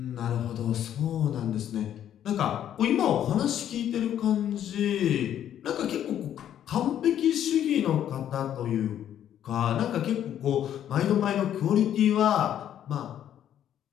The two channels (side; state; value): right; quieter; 10.5 dB